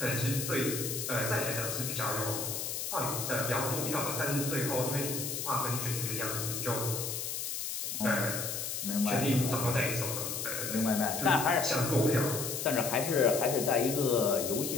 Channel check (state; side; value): noise; left; hiss, 3 dB below the sound